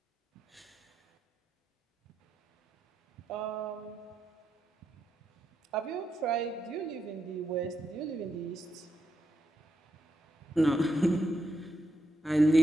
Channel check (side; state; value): both; normal; correlation 0.83